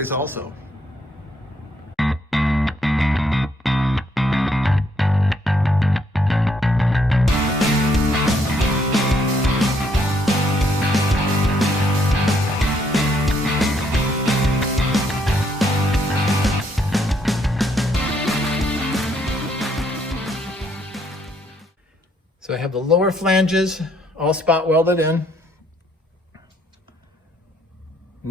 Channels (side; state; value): both; normal; correlation 0.70